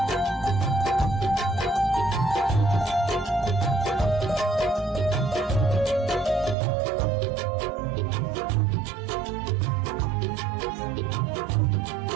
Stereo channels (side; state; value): left; drops out; at 6.6 s